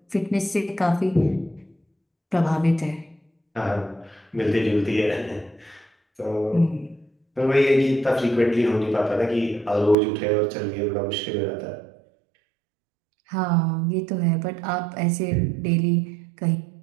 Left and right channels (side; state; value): left; drops out; at 10.0 s